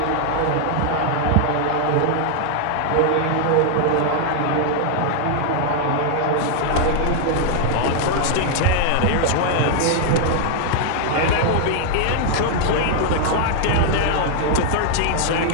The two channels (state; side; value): different; both; correlation 0.00